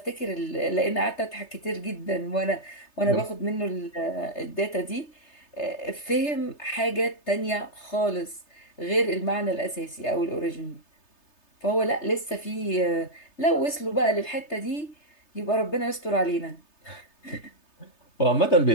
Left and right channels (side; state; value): right; late; 3.3 ms